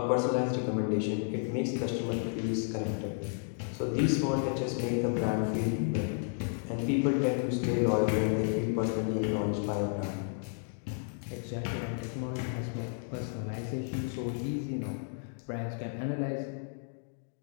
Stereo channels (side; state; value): right; silent; 56 dB below the other